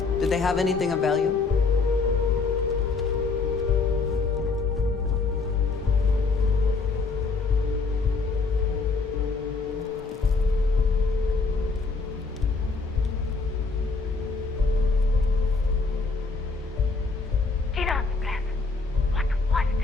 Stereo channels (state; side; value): quieter; right; 4.1 dB